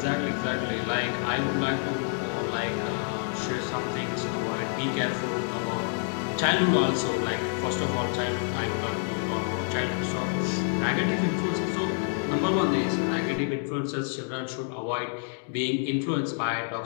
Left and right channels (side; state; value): right; silent; 59 dB below the other